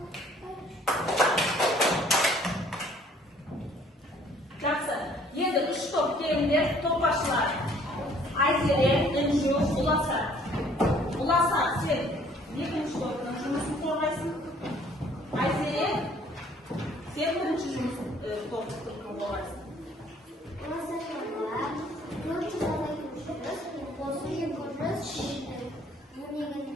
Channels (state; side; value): normal; both; correlation 0.58